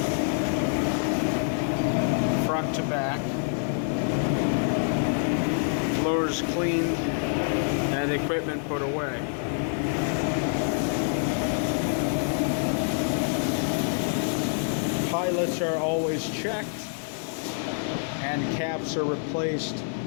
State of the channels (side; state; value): right; silent; digital silence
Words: front to back. Floors cleaned and equipment put away. Pilots are always checked and caps are replaced